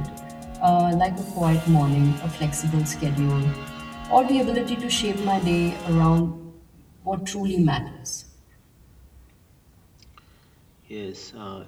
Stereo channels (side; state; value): both; identical; correlation 1.00